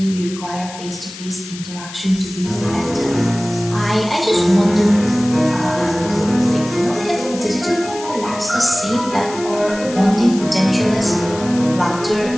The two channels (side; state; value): left; noise; hiss, 14 dB below the sound